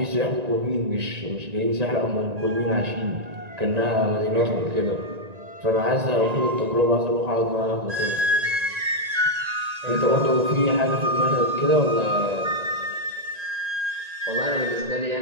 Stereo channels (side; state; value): left; late; 1.9 ms